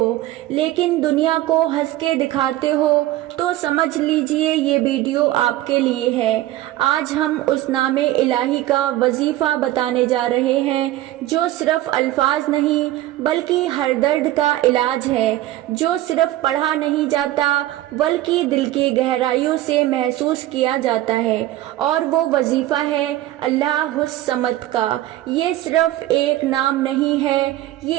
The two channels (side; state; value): left; quieter; 15.2 dB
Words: لیکن دنیا کو ہنس کے دکھاتے ہو، تو سمجھ لیجئے یہ ویڈیو آپ کے لیے ہے۔ آج ہم اس نام الہی کا وظیفہ بتانے جا رہے ہیں جو صرف الفاظ نہیں بلکہ ہر درد کا علاج ہے، جو صرف پڑھا نہیں جاتا بلکہ دل کی گہرائیوں سے محسوس کیا جاتا ہے، اور وہ وظیفہ ہے اللہ الصمد کا۔ یہ صرف ایک نام نہیں ہے،